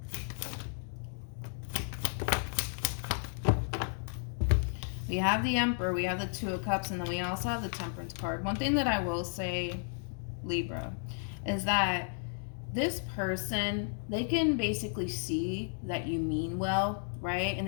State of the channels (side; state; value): right; silent; 56 dB below the other